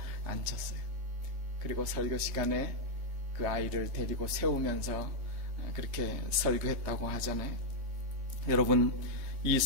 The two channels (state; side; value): late; left; 3.3 ms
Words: 앉혔어요. 그리고 설교 시간에 그 아이를 데리고 세우면서 그렇게 설교했다고 하잖아요. 여러분, 이